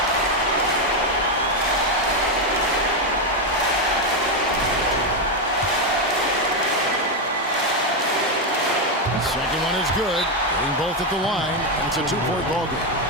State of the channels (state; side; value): normal; both; correlation 0.06